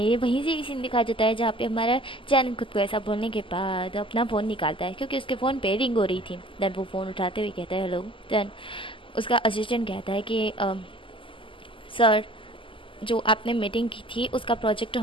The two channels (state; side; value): late; right; 0.25 ms